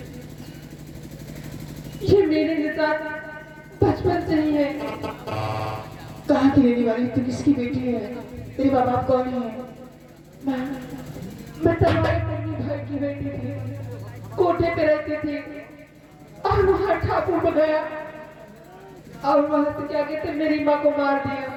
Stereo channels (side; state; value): both; identical; correlation 1.00